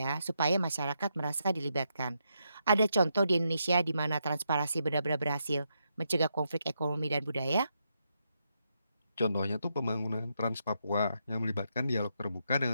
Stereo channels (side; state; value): both; inverted; correlation -0.81